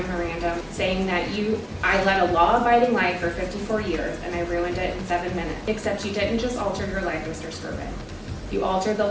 saying that I led a law-abiding life for 54 years and I ruined it in 7 minutes. Except you didn't just alter your life, Mr. Skirvin. You altered the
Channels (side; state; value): both; identical; correlation 1.00